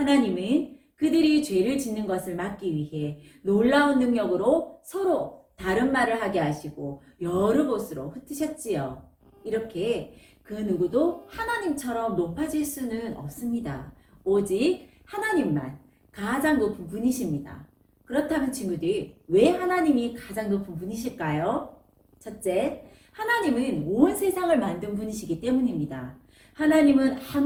그들이 죄를 짓는 것을 막기 위해 놀라운 능력으로 서로 다른 말을 하게 하시고 여러 곳으로 흩으셨지요. 이렇게 그 누구도 하나님처럼 높아질 수는 없습니다. 오직 하나님만 가장 높은 분이십니다. 그렇다면 친구들, 왜 하나님이 가장 높은 분이실까요? 첫째, 하나님은 온 세상을 만든 분이시기 때문입니다. 하나님은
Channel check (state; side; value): identical; both; correlation 1.00